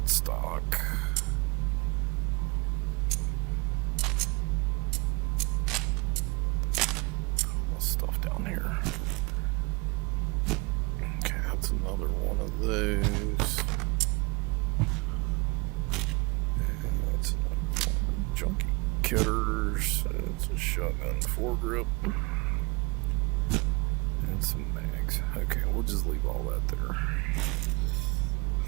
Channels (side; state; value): left; quieter; 26.8 dB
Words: Stuff down here. Okay, that's another one of those. And that's another one. Junkie cutters. It's a shotgun foregrip. And some mags. Okay, we'll just leave all that there.